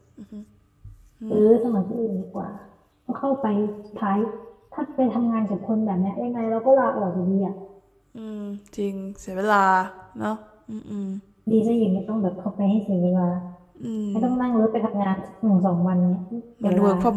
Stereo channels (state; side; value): identical; both; correlation 1.00